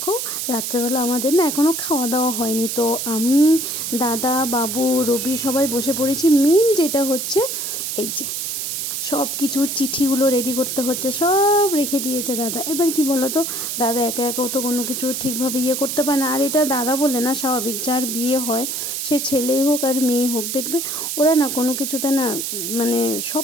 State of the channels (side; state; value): right; noise; hiss, 3 dB below the sound